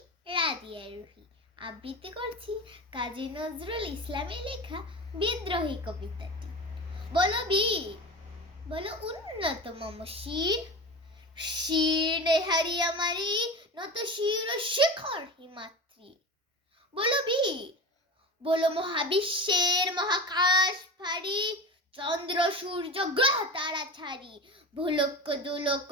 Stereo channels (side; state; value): both; normal; correlation 0.27